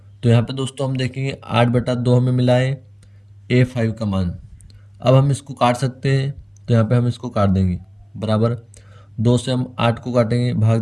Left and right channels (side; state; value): both; identical; correlation 1.00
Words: तो यहाँ पे दोस्तों हम देखेंगे 8/2 हमें मिला है A5 का मान। अब हम इसको काट सकते हैं, तो यहाँ पे हम इसको काट देंगे बराबर 2 से हम 8 को काटेंगे भाग